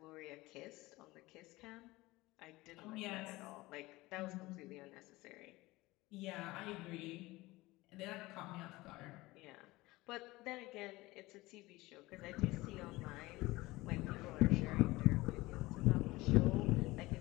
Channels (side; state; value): right; quieter; 20.1 dB